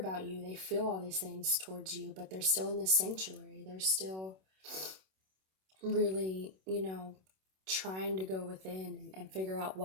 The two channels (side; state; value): left; late; 26 ms